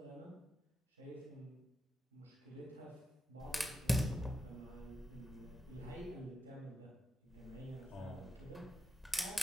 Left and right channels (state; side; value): normal; both; correlation 0.88